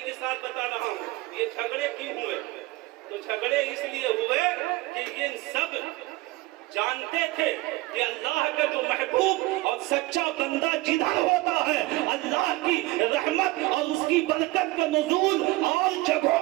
کے ساتھ بتا رہا ہوں۔ یہ جھگڑے کیوں ہوئے؟ تو جھگڑے اس لیے ہوئے کہ یہ سب جانتے تھے کہ اللہ کا جو محبوب اور سچا بندہ جدھر ہوتا ہے، اللہ کی رحمت اور اس کی برکت کا نزول اور جگہوں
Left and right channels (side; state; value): left; quieter; 20.3 dB